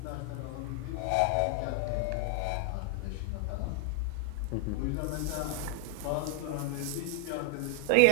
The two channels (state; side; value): different; both; correlation 0.00